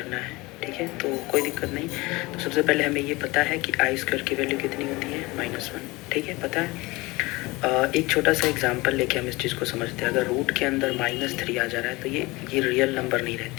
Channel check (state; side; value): quieter; right; 22.5 dB